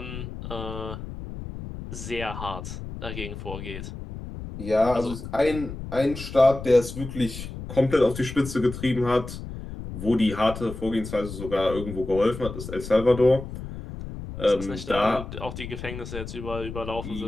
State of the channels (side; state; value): left; noise; rumble, 9 dB below the sound